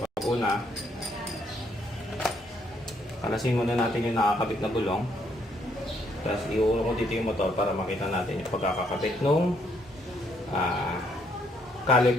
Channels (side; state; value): both; normal; correlation 0.70